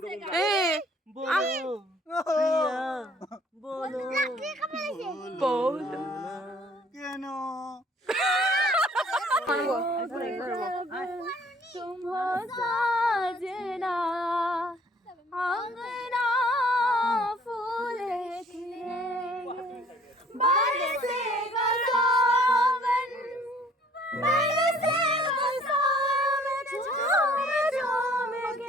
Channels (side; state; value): both; normal; correlation 0.57